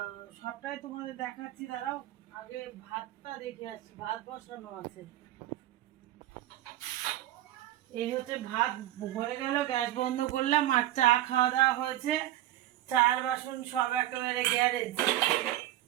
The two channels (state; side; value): quieter; left; 14.2 dB